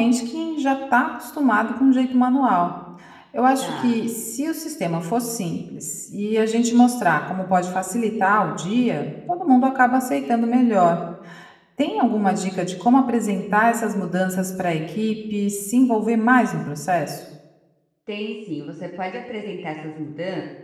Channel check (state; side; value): identical; both; correlation 1.00